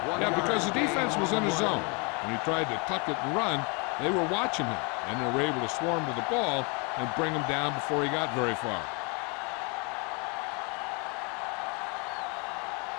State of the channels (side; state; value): right; quieter; 32.7 dB